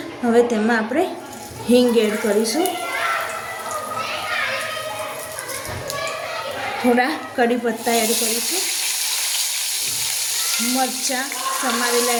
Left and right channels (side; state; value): both; identical; correlation 1.00